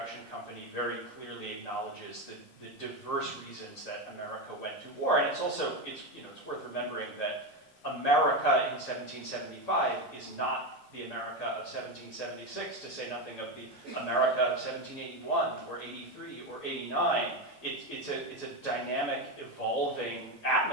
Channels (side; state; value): both; normal; correlation 0.13